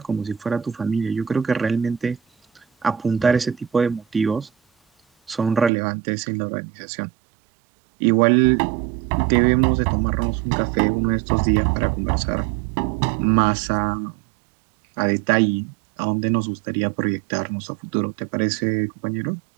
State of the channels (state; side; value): drops out; left; at 5.7 s